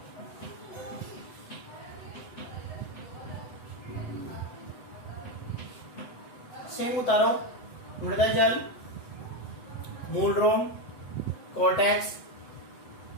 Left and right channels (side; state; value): right; late; 8.0 ms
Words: सेम उतारो, मृदा जल, मूल रोम, कोर्टेक्स,